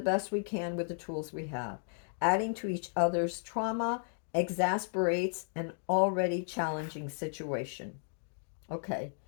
best we can with the tools we have. Adding to each other's trauma exasperates an already challenging situation. Okay,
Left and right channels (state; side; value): silent; right; digital silence